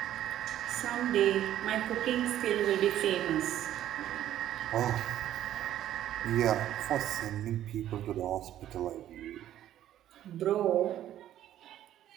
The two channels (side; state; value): left; quieter; 12.1 dB